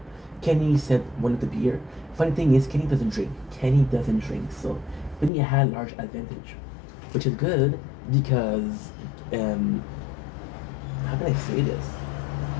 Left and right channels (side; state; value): right; drops out; at 5.3 s